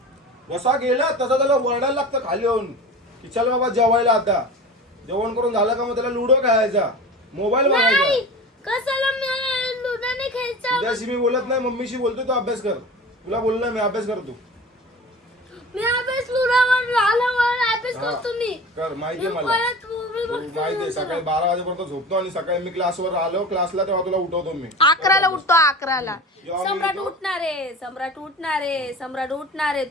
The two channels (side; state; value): both; normal; correlation 0.34